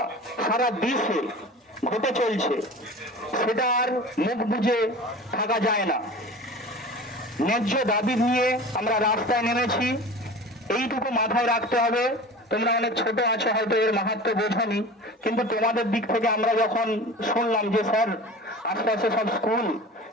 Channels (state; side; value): normal; both; correlation 0.37